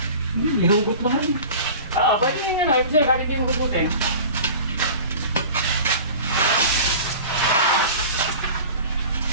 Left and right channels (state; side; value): inverted; both; correlation -0.39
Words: Ihugot lang rin. Pwede yun yun, ibig sa'yo, kahit yung hugutin.